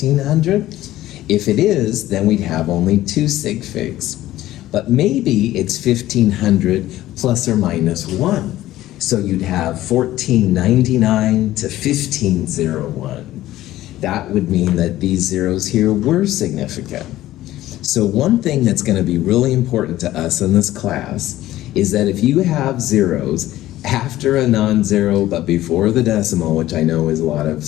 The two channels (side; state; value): right; quieter; 14.9 dB